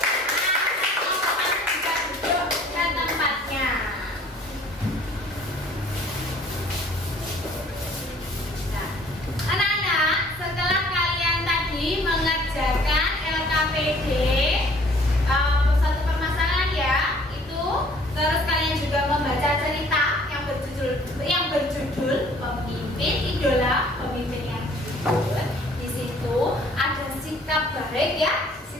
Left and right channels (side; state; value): both; normal; correlation 0.56